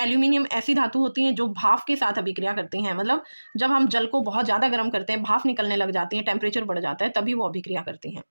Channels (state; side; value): inverted; both; correlation -1.00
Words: ऐसी धातु होती हैं जो भाप के साथ अभिक्रिया करती हैं, मतलब जब हम जल को बहुत ज़्यादा गर्म करते हैं, भाप निकलने लग जाती है, टेम्परेचर बढ़ जाता है, तभी वो अभिक्रिया करती हैं।